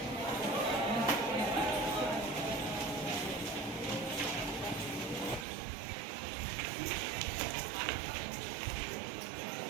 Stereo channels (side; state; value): left; drops out; at 5.5 s